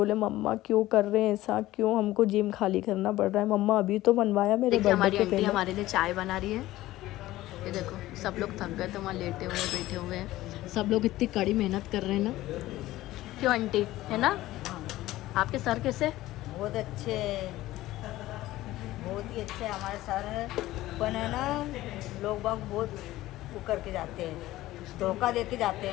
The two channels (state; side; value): quieter; right; 16.3 dB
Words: मम्मा क्यों कर रहे हैं ऐसा, क्यों हमको जिम खाली करना पड़ रहा है, मम्मा अभी तो बनवाया मेरे बर्थडे के पहले। हमारे लिए चाय बना रही है, ये देखो सब लोग थक गए तो वहाँ लेटे हुए बैठे हुए हैं, सब लोग इतनी कड़ी मेहनत कर रहे हैं ना, क्यों आंटी, है ना। आपके सर कैसे? बहुत अच्छे, बहुत ही अच्छे हमारे सर है। पर है ना, लोग बाग बहुत वो करके जाते हैं, धोखा दे के जाते